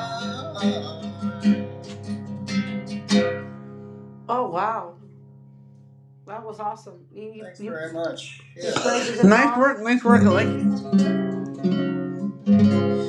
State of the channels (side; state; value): both; identical; correlation 1.00